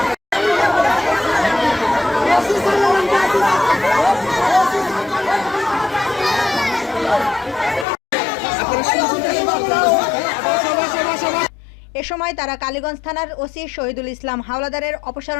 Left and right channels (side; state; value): right; drops out; at 7.9 s